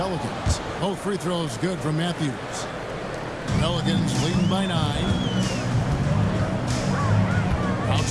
Both free throws good from Matthews. Pelicans leading by 9.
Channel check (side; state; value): both; identical; correlation 1.00